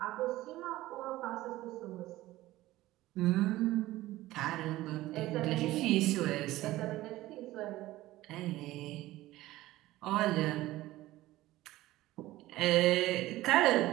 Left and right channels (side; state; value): left; quieter; 16.7 dB